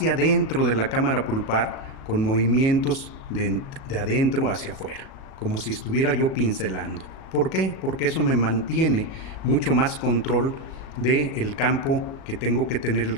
adentro de la cámara pulpar, con movimientos de adentro hacia afuera, como si estuviera yo pincelando. ¿Por qué? Porque eso me mantiene mucho más control del campo que tengo que tener, el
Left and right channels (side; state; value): right; late; 37 ms